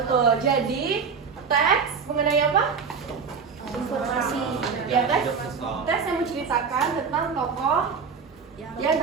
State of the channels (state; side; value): quieter; left; 5.8 dB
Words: Jadi teks mengenai apa? Informasi. Ya, teks yang menceritakan tentang tokoh yang